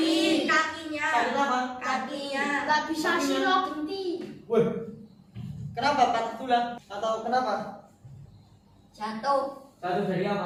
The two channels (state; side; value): identical; both; correlation 1.00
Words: kakinya. Sakit apa? Kakinya. Gak bisa silo genti. Wih, kenapa patah tulang? Atau kenapa? Jatuh. Jatuh dari